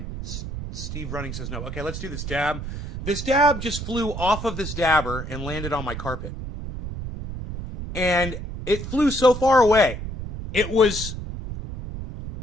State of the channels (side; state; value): right; noise; rumble, 7 dB below the sound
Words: Steve Running says no. Okay, let's do this dab. This dab just flew off of this dabber and landed on my carpet. And it flew so far away. It was